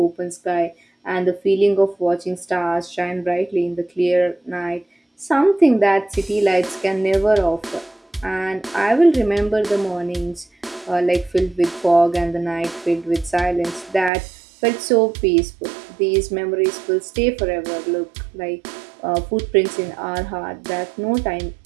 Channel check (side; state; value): left; drops out; at 14.1 s